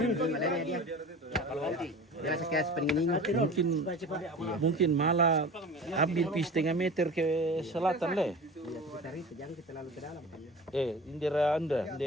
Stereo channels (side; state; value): both; normal; correlation 0.38